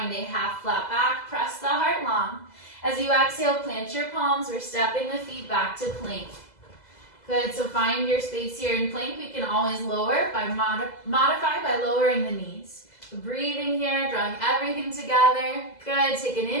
a half flat back. Press the heart long. As you exhale, plant your palms. We're stepping the feet back to plank. Good, so find your space here in plank. We can always lower by modify by lowering the knees. So breathing here, drawing everything together. Good, take an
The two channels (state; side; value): late; right; 2.0 ms